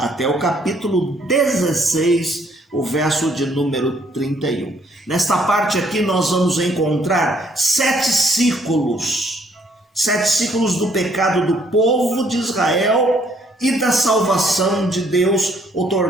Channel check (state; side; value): normal; both; correlation 0.66